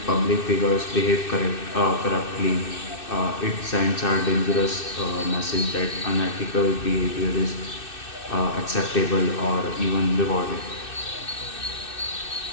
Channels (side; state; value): right; late; 2.6 ms